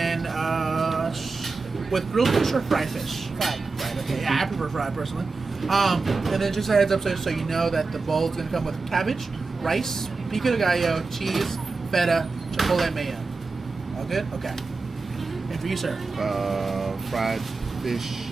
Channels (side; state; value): left; quieter; 4.1 dB